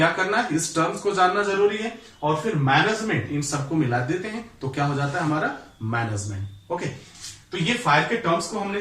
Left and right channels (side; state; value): both; identical; correlation 1.00